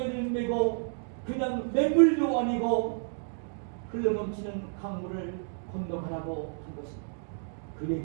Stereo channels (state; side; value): silent; left; digital silence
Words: 메고 그냥 맹물도 아니고 흘러넘치는 강물을 건너가라고 한 것입니다. 그